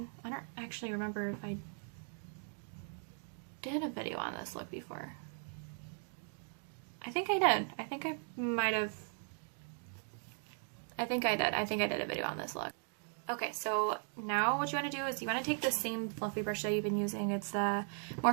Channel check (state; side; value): silent; left; 52 dB below the other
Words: I don't actually remember if I did a video on this look before. I think I did. I think I might have. I think I did. I think I did a video on this look. Okay, so now what you want to do is you want to take the same fluffy brush that you've been using. It's the